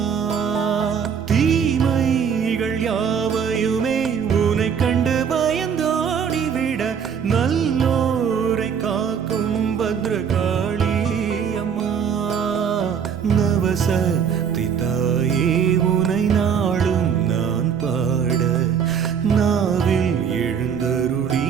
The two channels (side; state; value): left; quieter; 7.3 dB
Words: தீமைகள் யாவையுமே உனை கண்டு பயந்தோடிவிட நல்லோரை காக்கும் பத்ரகாளி அம்மா. நவசக்தி தாயே உனை நாளும் நான் பாட நாவில் எழுந்தருளி